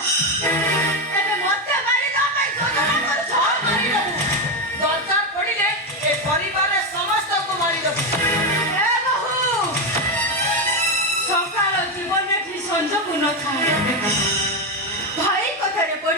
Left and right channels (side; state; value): both; normal; correlation 0.10